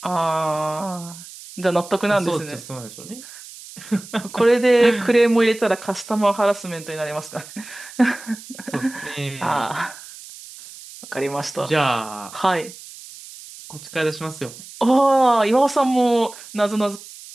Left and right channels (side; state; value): right; noise; hiss, 16 dB below the sound